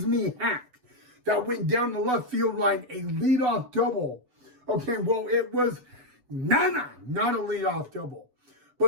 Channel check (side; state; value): left; late; 8.0 ms